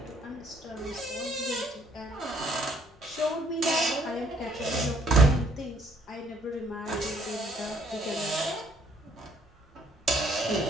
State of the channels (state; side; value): normal; both; correlation 0.64